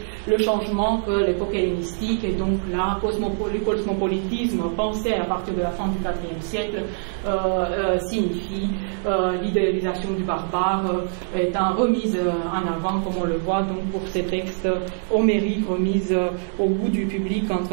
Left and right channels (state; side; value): silent; left; digital silence